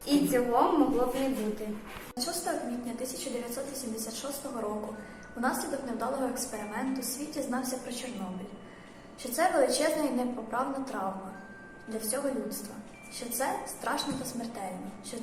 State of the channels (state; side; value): identical; both; correlation 1.00